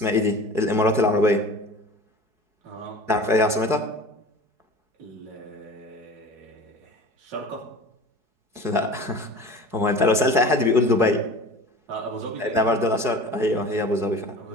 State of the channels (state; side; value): late; left; 4.7 ms